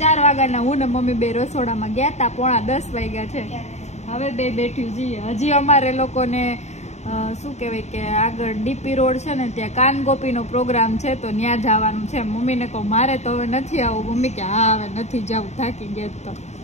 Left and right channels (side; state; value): right; late; 0.32 ms